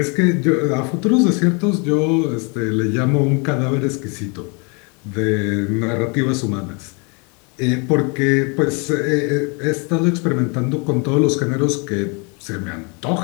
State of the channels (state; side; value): quieter; right; 33.2 dB